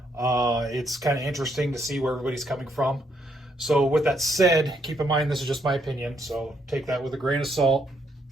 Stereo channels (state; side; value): normal; both; correlation 0.74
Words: It's kind of interesting to see where everybody's coming from. So with that said, keep in mind this is just my opinion, so take that with a grain of salt.